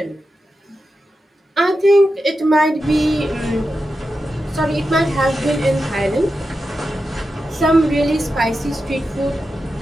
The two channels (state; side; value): normal; both; correlation 0.90